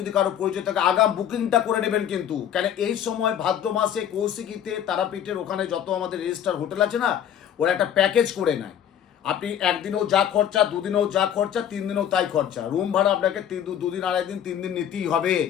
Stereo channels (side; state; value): right; quieter; 9.7 dB